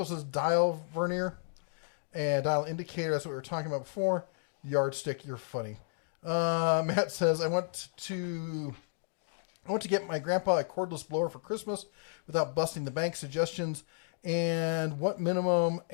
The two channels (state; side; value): silent; right; digital silence